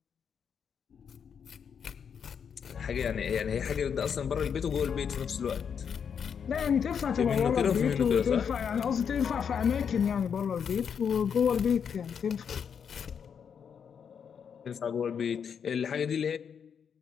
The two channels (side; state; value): right; quieter; 7.2 dB